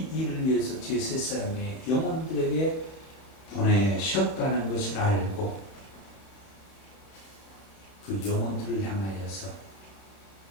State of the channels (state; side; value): late; right; 32 ms